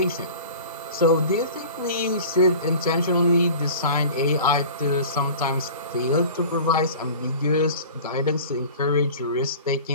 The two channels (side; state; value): both; inverted; correlation -0.40